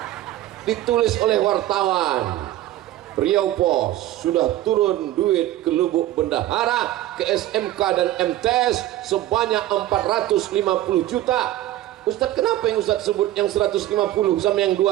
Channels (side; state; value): left; quieter; 14.4 dB